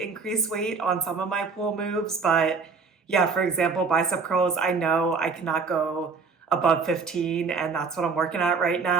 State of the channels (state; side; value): quieter; left; 4.8 dB